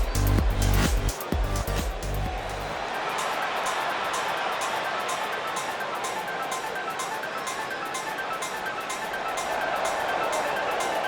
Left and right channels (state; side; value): identical; both; correlation 1.00